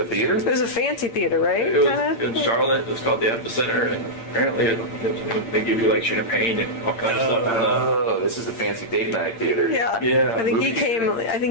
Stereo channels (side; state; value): right; late; 8.8 ms